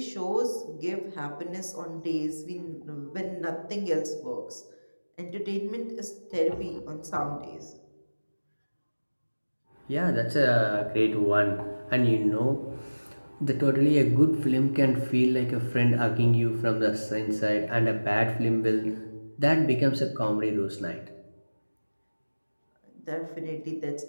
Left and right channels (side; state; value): both; inverted; correlation -1.00